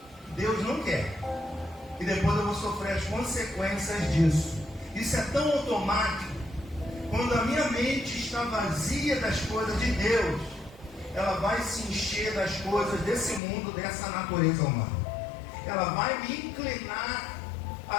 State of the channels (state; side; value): drops out; right; at 13.4 s